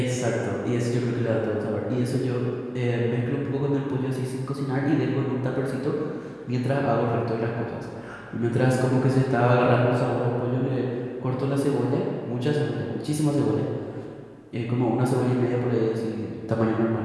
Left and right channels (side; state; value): both; identical; correlation 1.00